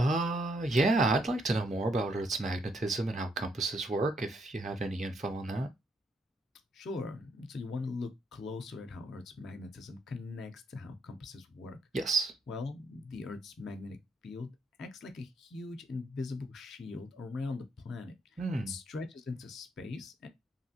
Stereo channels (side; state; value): both; normal; correlation 0.74